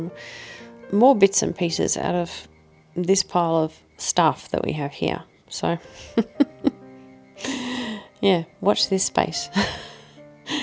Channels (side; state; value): both; identical; correlation 1.00